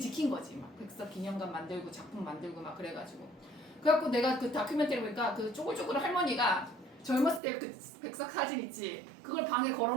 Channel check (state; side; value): drops out; left; at 7.4 s